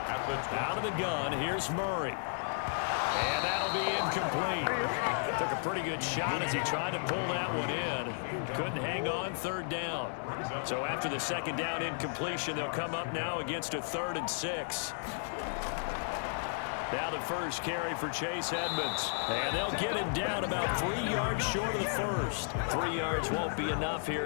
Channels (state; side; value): silent; right; digital silence